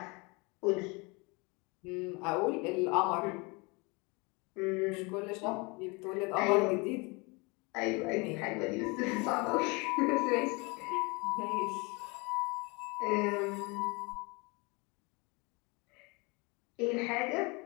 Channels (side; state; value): right; quieter; 27.9 dB